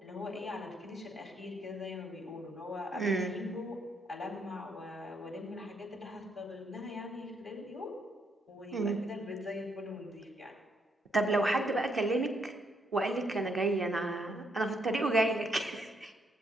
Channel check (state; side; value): normal; both; correlation 0.74